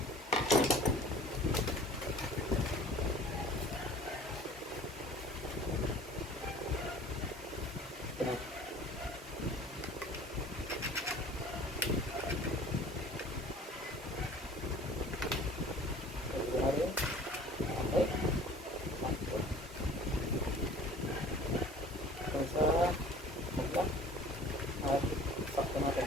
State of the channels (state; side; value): normal; both; correlation 0.46